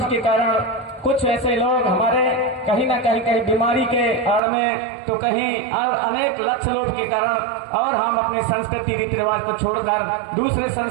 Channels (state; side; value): drops out; left; at 4.4 s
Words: के कारण कुछ ऐसे लोग हमारे कहीं ना कहीं बीमारी के आड़ में, तो कहीं अनेक लक्ष्य लोभ के कारण, और हम अपने संस्कृति रीति रिवाज को छोड़कर दूसरे